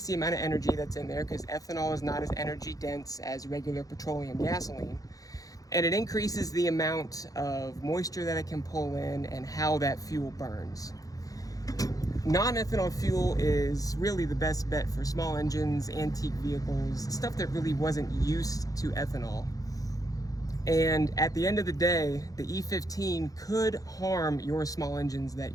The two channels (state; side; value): late; right; 0.17 ms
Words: the amount of energy that's in there because ethanol is not as energy dense as regular petroleum gasoline, and it increases the amount of moisture that it can pull in and how that fuel burns. Non-ethanol fuel is really the best bet for small engines, antique vehicles, stuff that really wasn't used to ethanol. And at the end of the day, the E15 could harm your small engines that